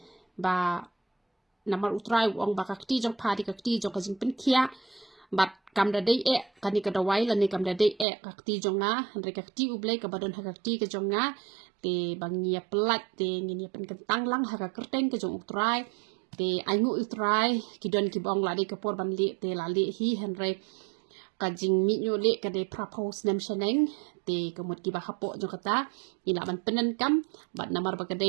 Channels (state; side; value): drops out; left; at 8.1 s